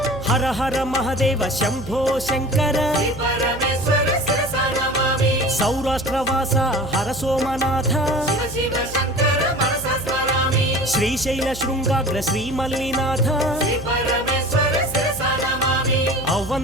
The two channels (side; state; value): right; noise; hum, 12 dB below the sound